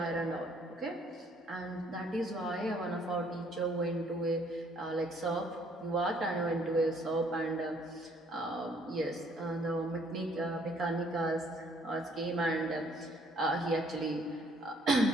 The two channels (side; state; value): both; normal; correlation 0.63